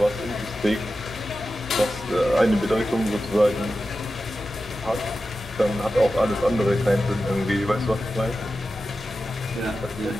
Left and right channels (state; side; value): normal; both; correlation 0.92